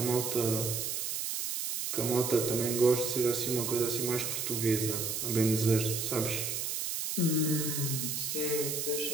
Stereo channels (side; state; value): right; noise; hiss, 2 dB below the sound